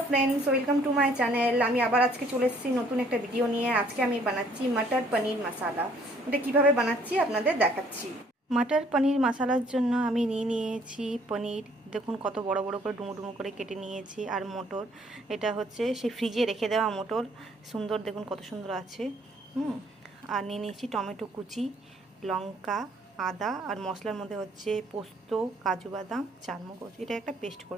friends, welcome to my channel. আমি আবার আজকে চলে এসেছি নতুন একটা ভিডিও নিয়ে। আজকে আমি বানাচ্ছি মটর পনির মশালা। এটা কিভাবে বানাচ্ছি আপনাদের দেখাচ্ছি। মটর পনির মশালার জন্য আমি নিয়েছি পনির। দেখুন কত বড় বড় করে ডুমো ডুমো করে কেটে নিয়েছি। আর মটর, এটা হচ্ছে সেই ফ্রিজে রেখে দেওয়া মটর। সুন্দর, দেখুন কত সুন্দর আছে। আর নিয়েছি টমেটো কুচি, লঙ্কা, আদা, আর মশলার মধ্যে হচ্ছে পোস্ত, কাজু বাদাম, চারমগজ। এটা একটা পেস্ট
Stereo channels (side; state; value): both; normal; correlation 0.61